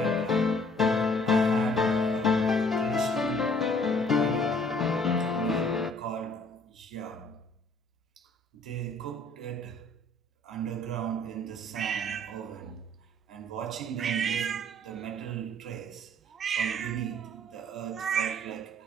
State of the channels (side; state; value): both; normal; correlation 0.58